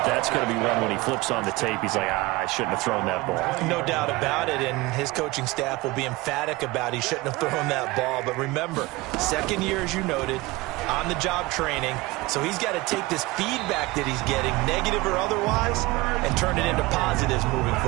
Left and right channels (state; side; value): quieter; left; 21.2 dB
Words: that's going to be one when he flips on the tape. He's like, I shouldn't have thrown that ball. No doubt about it, and his coaching staff will be emphatic about he shouldn't have thrown that ball. But remember, 2nd year, as you noted, on-the-job training. So he's got to take this feedback that he's getting, negative or otherwise, and turn it into positives moving